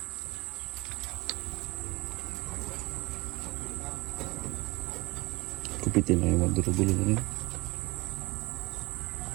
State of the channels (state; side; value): quieter; left; 22.6 dB